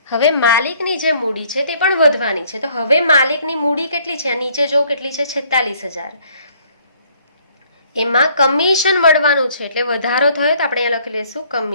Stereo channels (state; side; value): inverted; both; correlation -0.62